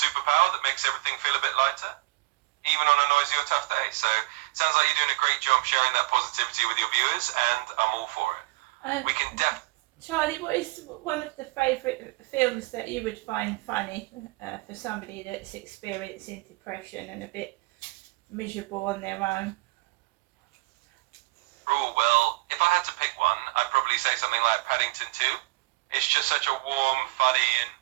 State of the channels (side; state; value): left; quieter; 22.1 dB